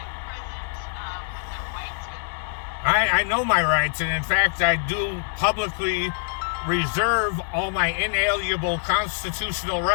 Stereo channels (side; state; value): right; silent; digital silence